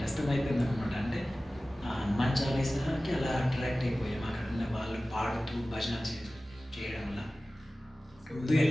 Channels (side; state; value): both; normal; correlation 0.97